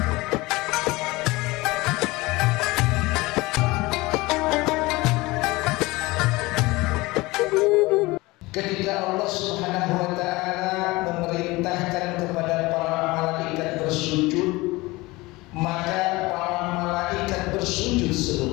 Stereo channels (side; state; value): right; quieter; 21.7 dB